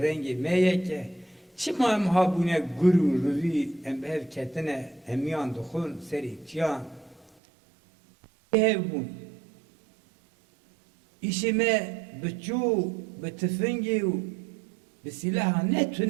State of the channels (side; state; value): left; drops out; at 7.3 s